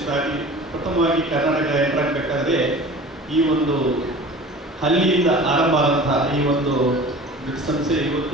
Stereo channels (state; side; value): normal; both; correlation 0.40